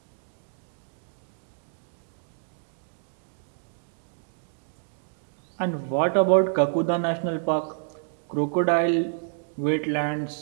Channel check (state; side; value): silent; left; digital silence